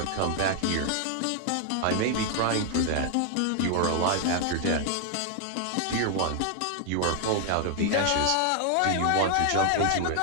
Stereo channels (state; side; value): different; both; correlation 0.00